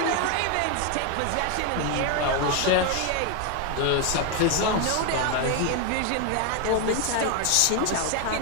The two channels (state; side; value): different; both; correlation 0.01